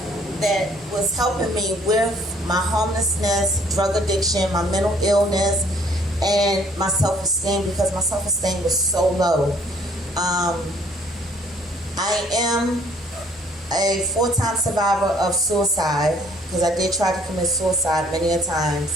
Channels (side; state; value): both; normal; correlation 0.60